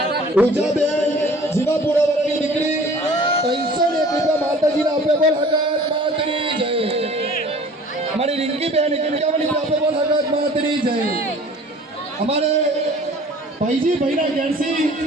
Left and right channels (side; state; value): both; normal; correlation 0.48